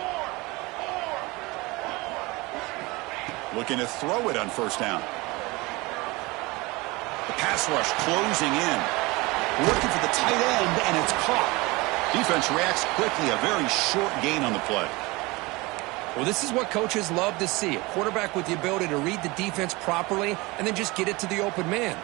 Looking to throw it on first down. The pass rush closing in. Looking for the tight end, and it's caught. Defense reacts quickly. A very short gain on the play. Well, this is what coaches love to see. A quarterback with the ability to read the defense properly and then just get it to the open man.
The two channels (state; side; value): quieter; left; 23.5 dB